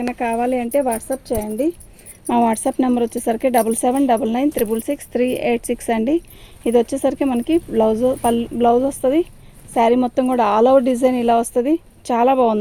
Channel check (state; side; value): identical; both; correlation 1.00